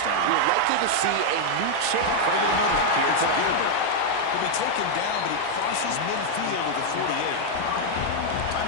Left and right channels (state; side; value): different; both; correlation 0.00